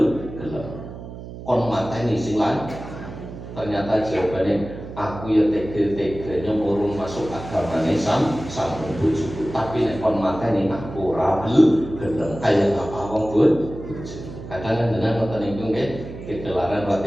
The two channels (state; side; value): noise; right; hum, 12 dB below the sound